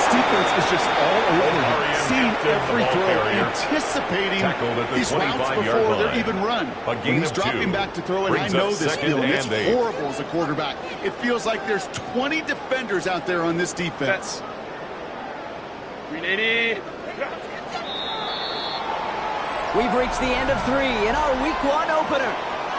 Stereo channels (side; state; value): both; identical; correlation 1.00